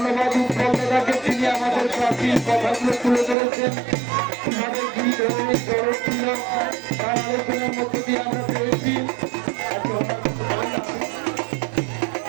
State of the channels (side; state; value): left; drops out; at 3.4 s